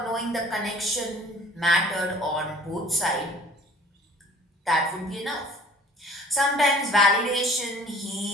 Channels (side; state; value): both; normal; correlation 0.49